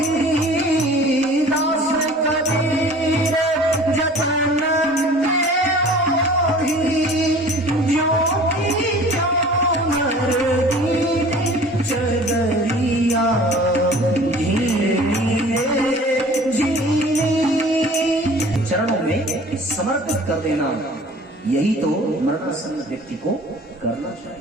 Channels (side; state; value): both; normal; correlation 0.46